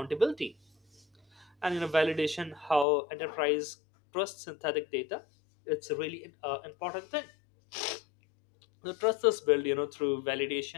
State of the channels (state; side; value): drops out; right; at 2.9 s